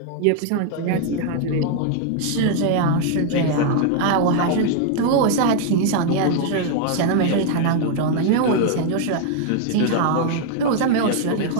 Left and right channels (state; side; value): different; both; correlation 0.00